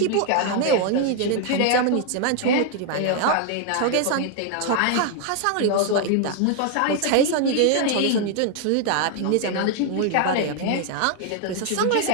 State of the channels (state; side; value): different; both; correlation 0.00